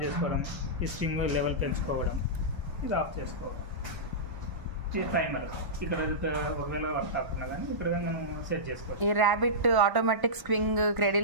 చేసుకోవడం, ఈ స్ట్రింగ్ లెవెల్ పెంచుకోవడం, ఇది ఆఫ్ చేసుకోవడం. ఇది టైమర్. ఇక్కడ ఒకవేళ వర్క్ కాకుండా కానీ ఇక్కడ మనం సెట్ చేసుకోవాలి. ఈ ర్యాబిట్ ఆటోమేటిక్ స్వింగ్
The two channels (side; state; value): left; late; 1.0 ms